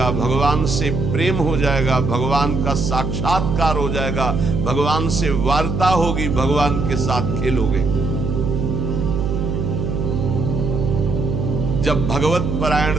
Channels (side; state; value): right; noise; hum, 1 dB below the sound